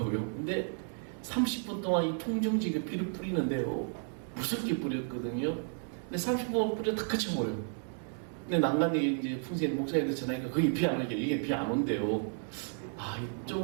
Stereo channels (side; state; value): left; silent; 56 dB below the other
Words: 근데 30분 동안 이 통정지가 비를 뿌리는데요. 무섭게 뿌렸거든요. 근데 30분 뿌려 다 그쳐버려요. 근데 난간에 이제 풍세인 목사님들 전화니까 거기 비 안 오게 이게 비 안 온대요. 이